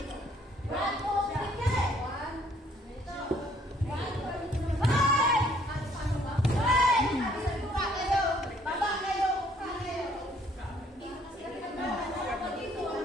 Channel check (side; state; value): both; normal; correlation 0.63